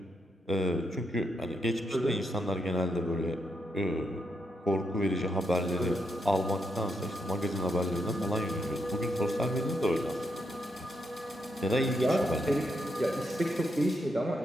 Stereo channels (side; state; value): both; normal; correlation 0.80